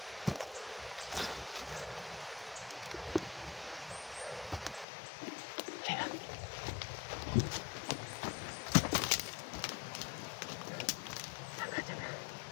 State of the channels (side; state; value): right; drops out; at 4.9 s